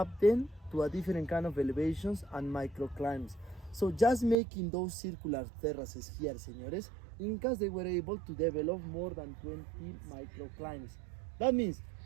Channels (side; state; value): left; drops out; at 4.4 s